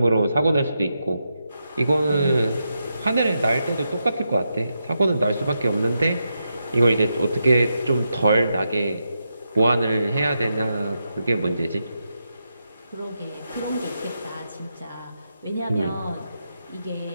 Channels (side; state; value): both; inverted; correlation -0.85